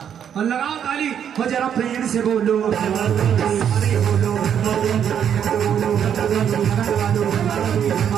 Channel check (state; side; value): quieter; left; 8.7 dB